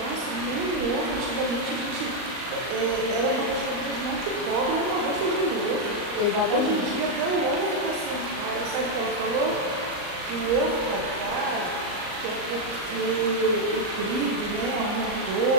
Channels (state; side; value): late; left; 38 ms